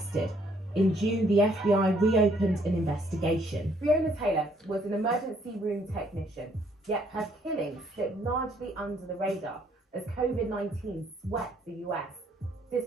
In June, the FBI reopened an investigation. Breonna Taylor was an emergency room technician, yet her killing slipped largely under the radar as COVID-19 swept the US,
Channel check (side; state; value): both; normal; correlation 0.66